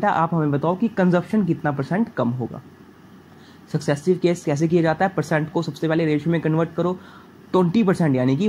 है, आप हमें बताओ कि कंजप्शन कितना परसेंट कम होगा। सक्सेसिव केस कैसे किया जाता है, परसेंट को सबसे पहले रेशियो में कन्वर्ट करो, 20% यानी कि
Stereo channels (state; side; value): identical; both; correlation 1.00